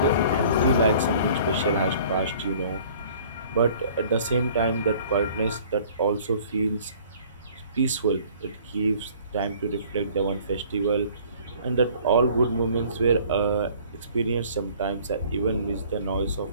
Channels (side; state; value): both; inverted; correlation -0.53